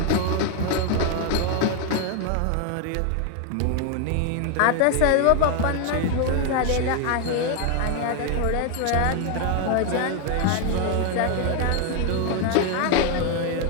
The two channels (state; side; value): different; both; correlation 0.01